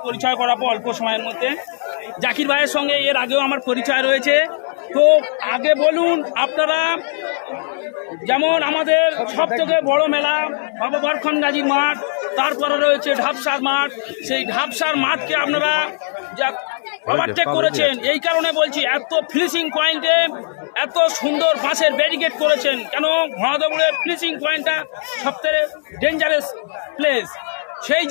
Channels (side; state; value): right; silent; digital silence